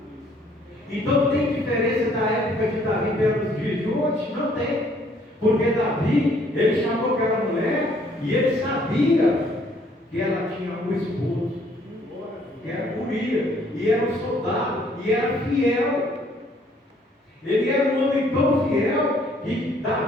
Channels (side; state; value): both; normal; correlation 0.63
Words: Então tem diferença da época de Davi pelos dias de hoje? Não tem. Porque Davi, ele chamou aquela mulher e ele sabia que ela tinha um esposo, que era Urias, e era um soldado, e era fiel. Ele era um homem tão fiel que